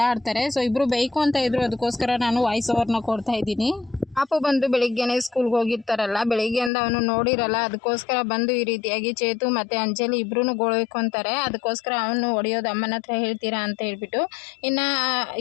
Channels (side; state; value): right; drops out; at 6.7 s